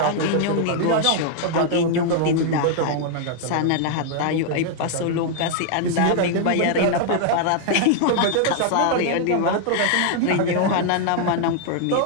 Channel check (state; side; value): different; both; correlation 0.00